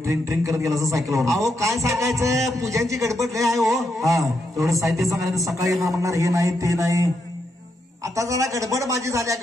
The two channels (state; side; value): normal; both; correlation 0.81